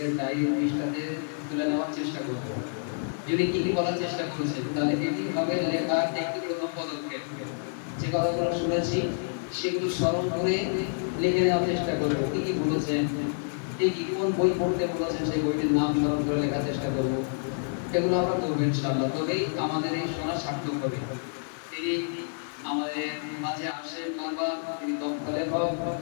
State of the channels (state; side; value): silent; right; digital silence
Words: ডায়েরির পৃষ্ঠাতে তুলে নেওয়ার চেষ্টা করব। যদি কি কি বলার চেষ্টা করেছেন, তাহলে এটি হবে লেখার একটি প্রথম পদক্ষেপ। যে কথাগুলো শুনেছি সেগুলো স্মরণ করে লিখে নেওয়ার চেষ্টা করব। কি কি বলেছেন, ঠিক কোন বই পড়তে বলেছেন সেই বইটির নাম স্মরণ করে লেখার চেষ্টা করব। এগুলো আমরা করবো ইনশাআল্লাহ, তবেই আমাদের এই শোনা সার্থক হবে। তিনি আমাদের মাঝে আসেন বারবার, তিনি দক্ষ লেখক।